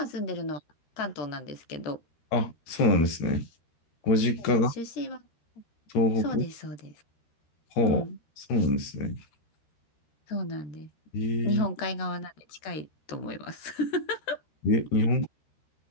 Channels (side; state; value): right; late; 13 ms